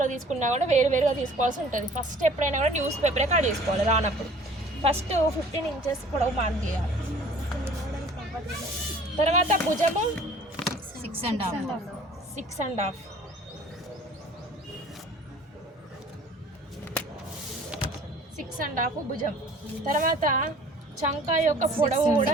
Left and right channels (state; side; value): normal; both; correlation 0.50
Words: తీసుకున్నా కూడా వేరువేరుగా తీసుకోవాల్సి ఉంటుంది. ఫస్ట్ ఎప్పుడైనా కూడా న్యూస్ పేపరే కట్ చేసుకోవాలి రానప్పుడు. ఫస్ట్ 15 ఇంచెస్ పొడవు మార్క్ చేయాలి. తర్వాత భుజము 6.5 6.5 భుజం. తర్వాత చంక యొక్క పొడవు కూడా